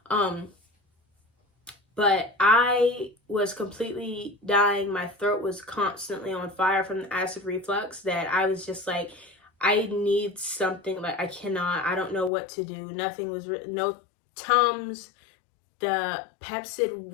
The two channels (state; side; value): drops out; right; at 12.3 s